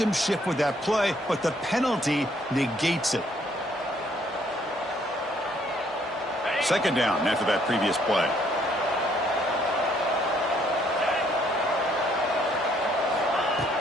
shift with that play, but the penalty negates it. Second down after that previous play.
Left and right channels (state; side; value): normal; both; correlation 0.66